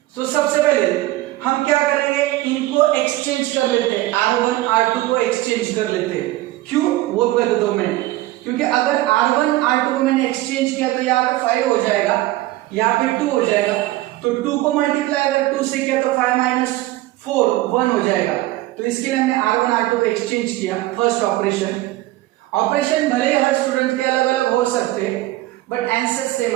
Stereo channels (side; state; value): left; quieter; 17.1 dB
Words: तो सबसे पहले हम क्या करेंगे, इनको एक्सचेंज कर लेते हैं, R1 R2 को एक्सचेंज कर लेते हैं। क्यों वो कर देता हूं मैं, क्योंकि अगर R1 R2 को मैंने एक्सचेंज किया तो यहाँ पे 5 हो जाएगा, यहाँ पे 2 हो जाएगा। तो 2 को मल्टीप्लाई अगर 2 से किया तो 5 माइनस 4 1 हो जाएगा। तो इसके लिए हमने R1 R2 को एक्सचेंज किया। फर्स्ट ऑपरेशन भले ही हर स्टूडेंट के अलग अलग हो सकते हैं, बट आंसर सेम